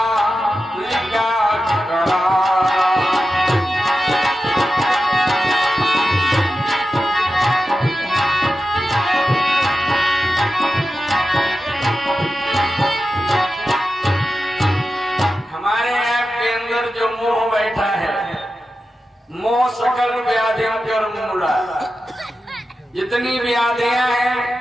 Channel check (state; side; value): normal; both; correlation 0.91